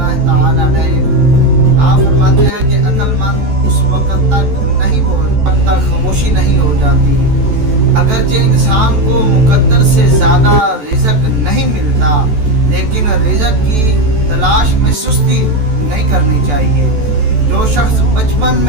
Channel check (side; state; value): left; late; 14 ms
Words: ताला अलैह आप फरमाते हैं कि अक्लमंद उस वक़्त तक नहीं बोलता जब तक खामोशी नहीं हो जाती। अगरचे इंसान को मुकद्दर से ज़्यादा रिज़्क नहीं मिलता, लेकिन रिज़्क की तलाश में सुस्ती नहीं करनी चाहिए। जो शख्स बचपन